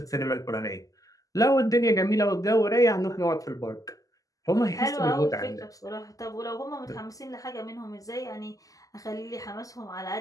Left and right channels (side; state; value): right; late; 0.17 ms